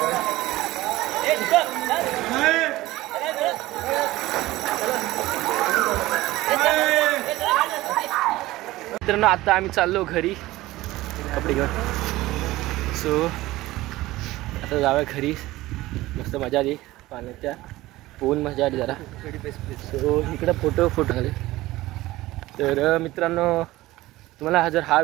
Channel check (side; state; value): left; quieter; 17.8 dB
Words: मित्रांनो आता आम्ही चाललो घरी कपडे घेऊन. सो आता जाऊया घरी. मस्त मजा आली पाण्याच्या. पोहून मजा आली जरा. सो इकडं फोटो झाले. तर मित्रांनो तुम्हाला जर हा